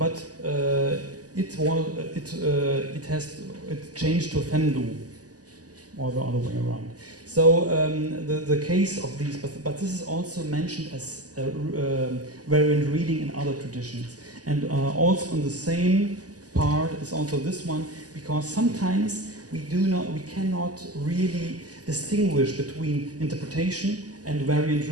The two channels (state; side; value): late; left; 0.67 ms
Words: it changed to Fendu, or the other way around. So the case of these, but this is also mentioned as variant reading in other traditions, and also on the same part is also this one, because sometimes we cannot really distinguish between interpretation and variant